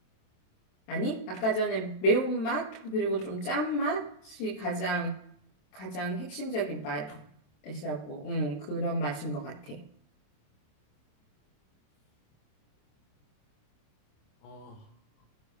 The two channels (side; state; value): right; late; 27 ms